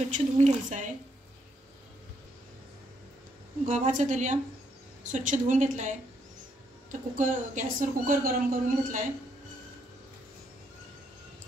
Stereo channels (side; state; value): both; normal; correlation 0.74